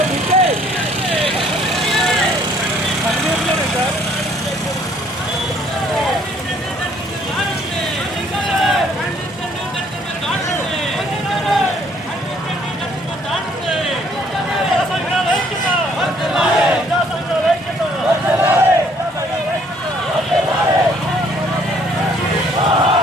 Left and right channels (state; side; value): normal; both; correlation 0.62